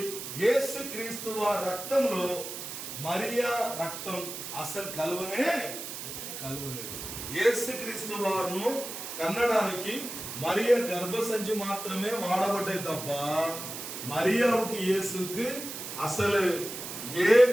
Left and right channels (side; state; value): right; noise; hiss, 8 dB below the sound